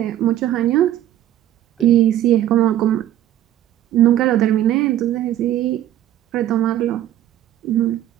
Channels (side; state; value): left; quieter; 12.2 dB